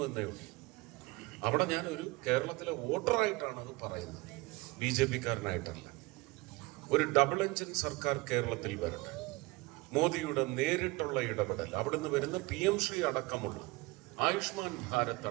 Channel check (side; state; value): left; quieter; 23.1 dB